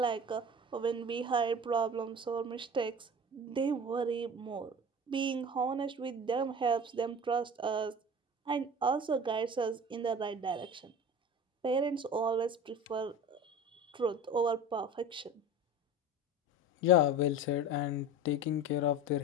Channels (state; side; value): normal; both; correlation 0.35